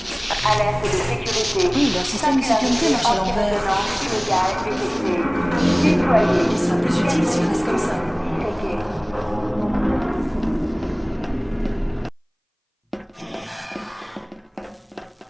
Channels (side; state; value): both; identical; correlation 1.00